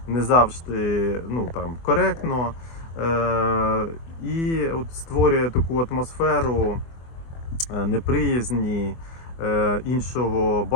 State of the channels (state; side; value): late; right; 24 ms